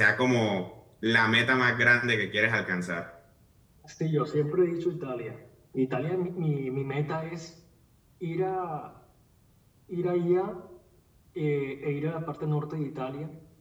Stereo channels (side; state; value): both; identical; correlation 1.00